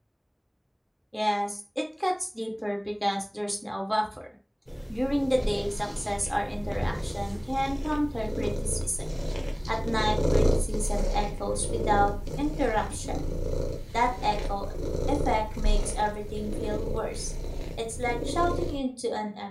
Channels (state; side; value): identical; both; correlation 1.00